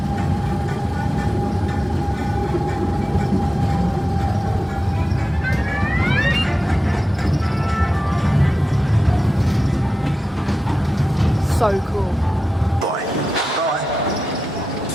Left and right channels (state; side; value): normal; both; correlation 0.92